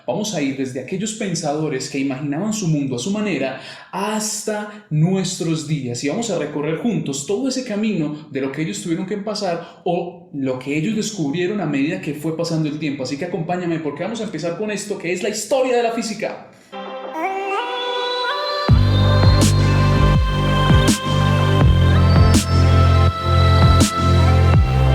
Vamos a ir desde aquellos pensadores que imaginaban su mundo a su manera hasta nuestros días y vamos a recorrer juntos todo ese camino de lo que ellos tuvieron que pasar o lo que ellos descubrieron a medida que fue pasando el tiempo. Así que acompáñame porque vamos a empezar con esto que es la historia de la física.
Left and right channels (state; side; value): identical; both; correlation 1.00